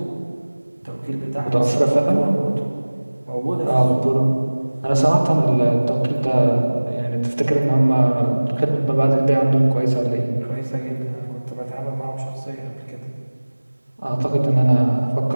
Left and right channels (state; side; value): inverted; both; correlation -1.00